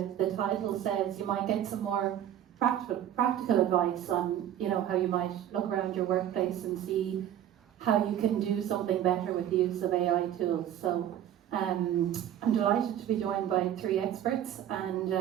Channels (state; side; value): quieter; left; 10.9 dB